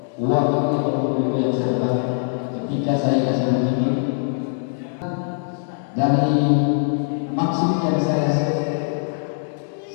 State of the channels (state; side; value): silent; right; 64 dB below the other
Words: uang itu yang serta ketika saya kasih begini dari maksud yang saya